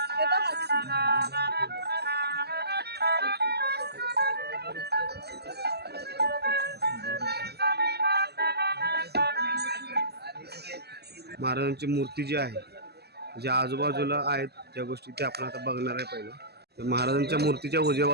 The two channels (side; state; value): left; late; 0.47 ms